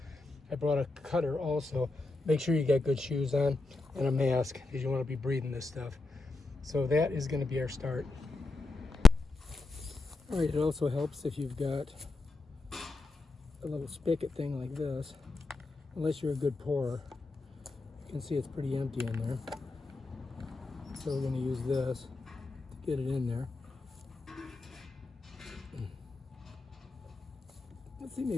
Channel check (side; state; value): right; quieter; 3.3 dB